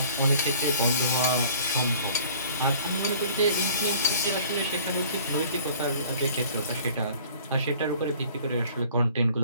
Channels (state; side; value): inverted; both; correlation -0.51